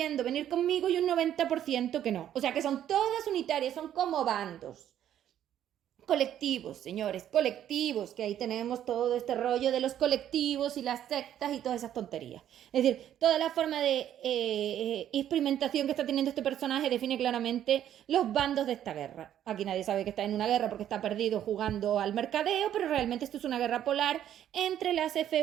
venir conmigo y un 90% que no. O sea que son todas unitarias, son como bandos. Colectivos, señores, colectivos, que ahí tenemos todo este rollo de los colectivos y las sectas y todas esas tonterías. Es decir, toda la forma de experimentación que está teniendo este personaje define claramente los bandos de esta guerra. Aquí nadie sabe que está en una guerra porque está perdido jugando al mercadeo, pero realmente esto es una guerra polar entre las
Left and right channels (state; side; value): quieter; left; 10.9 dB